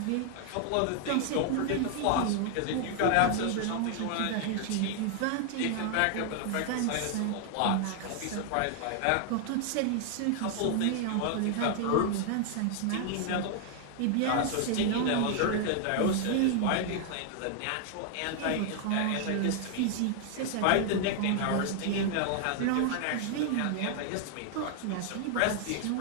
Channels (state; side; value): different; both; correlation 0.00